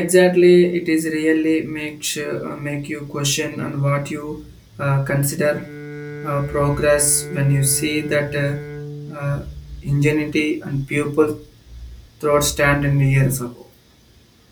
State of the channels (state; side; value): identical; both; correlation 1.00